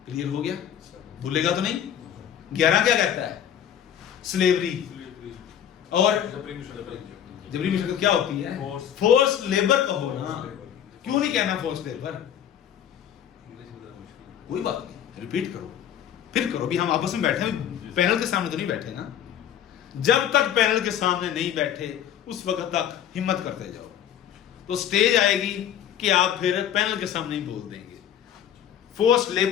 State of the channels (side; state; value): right; quieter; 9.8 dB